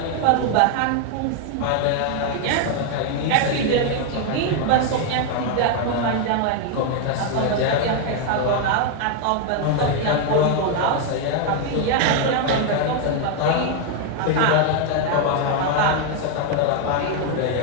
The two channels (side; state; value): both; different; correlation 0.00